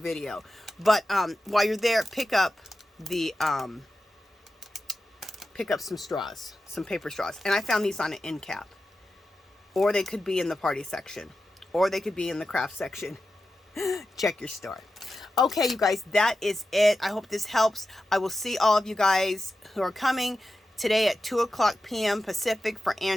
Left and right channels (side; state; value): both; normal; correlation 0.91